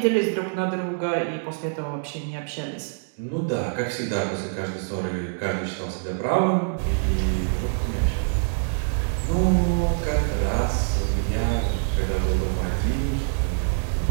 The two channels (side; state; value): left; silent; digital silence